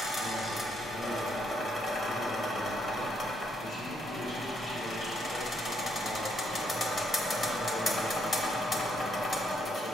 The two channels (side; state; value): both; normal; correlation 0.73